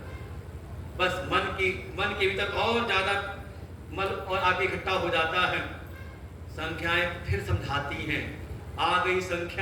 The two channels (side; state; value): both; identical; correlation 1.00